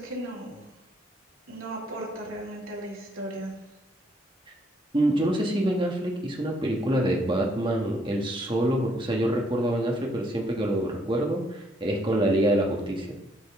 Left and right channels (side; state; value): both; normal; correlation 0.69